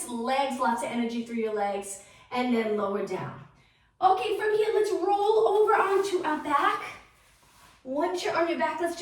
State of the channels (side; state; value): both; identical; correlation 1.00